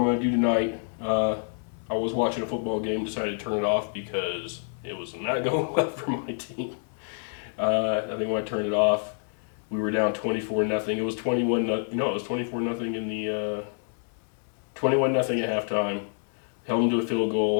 going to do tonight. I was watching a football game, decided to turn it off because it was not going well for my team. I think when I turned it off, we were down 24-0. It was 21. It was 24-0 in the 21-0 at halftime. Held them to a field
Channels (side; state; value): right; silent; 59 dB below the other